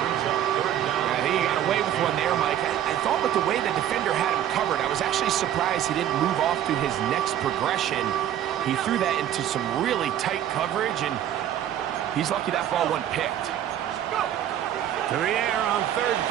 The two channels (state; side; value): quieter; left; 11.0 dB